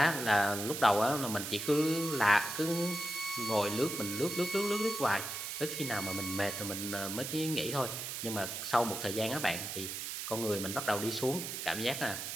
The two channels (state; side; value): noise; right; hiss, 5 dB below the sound